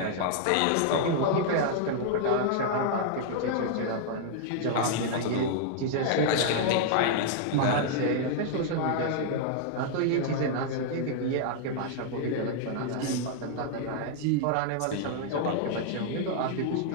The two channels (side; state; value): both; different; correlation -0.01